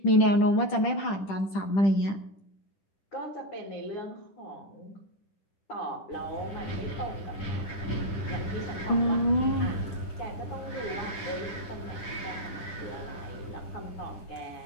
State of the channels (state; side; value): late; right; 10 ms